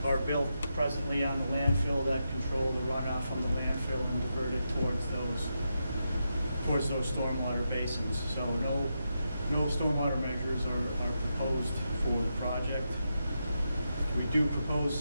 are built presently on the landfill that control the runoff from the landfill and divert it towards those stormwater basins. So no stormwater measures are proposed for the project. We do propose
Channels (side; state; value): both; inverted; correlation -0.86